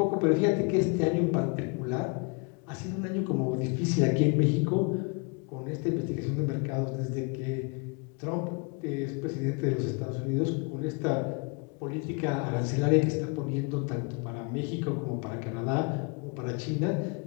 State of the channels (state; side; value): quieter; right; 33.3 dB